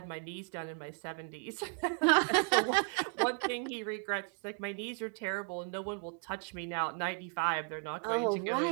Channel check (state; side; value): quieter; left; 39.7 dB